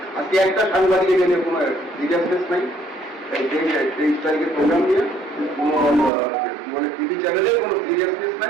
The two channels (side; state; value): left; drops out; at 6.1 s